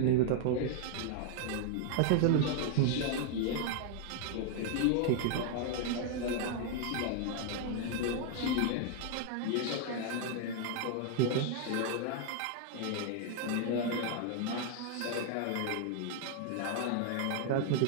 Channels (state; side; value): different; both; correlation 0.00